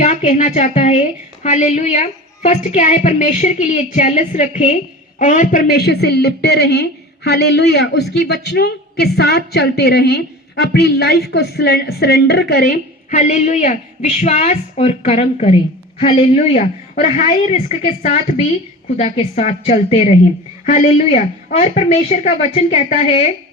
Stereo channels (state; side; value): normal; both; correlation 0.35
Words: कहना चाहता है, हालेलुया। फर्स्ट क्या है, परमेश्वर के लिए जेलस रखें और परमेश्वर से लिपटे रहें, हालेलुया, उसकी वचनों के साथ चलते रहें, अपनी लाइफ को सरेंडर करें, हालेलुया, विश्वास और कर्म करें, हालेलुया, और हाई रिस्क के साथ भी खुदा के साथ चलते रहें, हालेलुया। और परमेश्वर का वचन कहता है